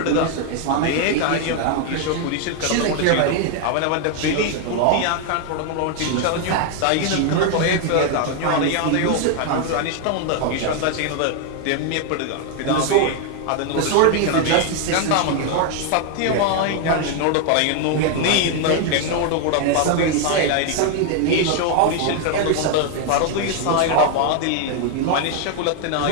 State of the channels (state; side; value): different; both; correlation 0.00